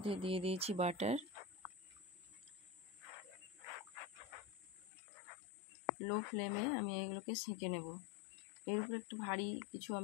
দিয়ে দিয়েছি বাটার। লো ফ্লেমে আমি এগুলোকে সেঁকে নেব। এর উপরে একটু ভারী কিছু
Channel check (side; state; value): right; drops out; at 4.9 s